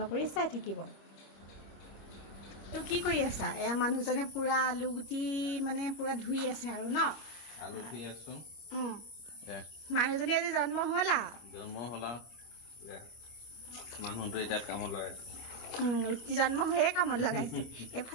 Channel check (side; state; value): right; late; 25 ms